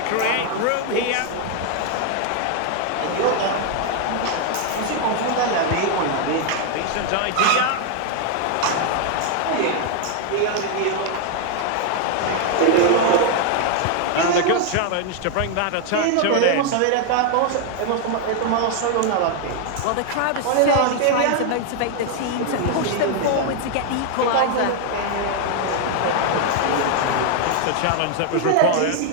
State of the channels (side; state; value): both; different; correlation 0.00